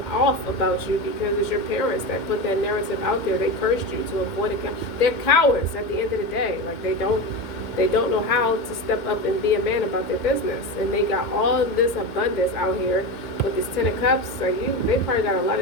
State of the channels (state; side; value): late; right; 2.1 ms